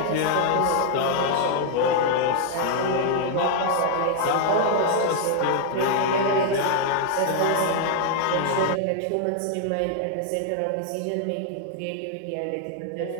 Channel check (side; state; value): both; different; correlation 0.00